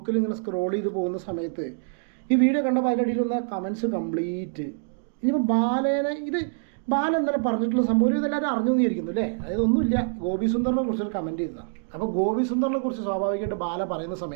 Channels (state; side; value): silent; left; digital silence